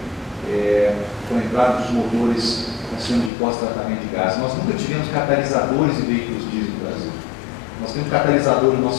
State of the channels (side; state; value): right; drops out; at 3.3 s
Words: com a entrada dos motores sistema de pós-tratamento de gases. Nós nunca tivemos catalisadores em veículos diesel no Brasil. Nós temos catalisador no